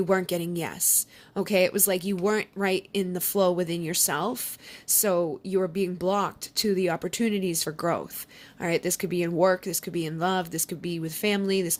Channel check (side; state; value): both; identical; correlation 1.00